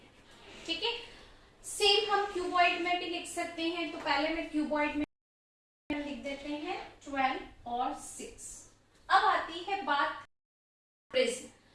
ठीक है, सेम हम क्यूबॉइड में भी लिख सकते हैं। तो पहले मैं क्यूबॉइड में लिख देते हैं 12 और 6। अब आती है बात प्रिज्म।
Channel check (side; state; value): both; identical; correlation 1.00